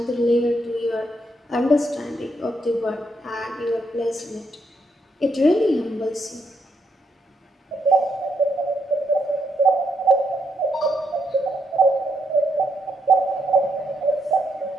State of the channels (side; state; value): both; normal; correlation 0.77